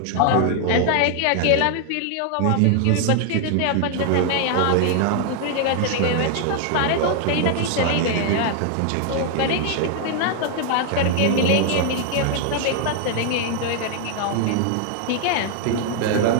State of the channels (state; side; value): different; both; correlation 0.00